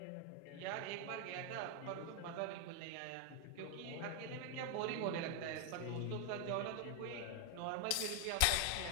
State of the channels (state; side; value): different; both; correlation 0.00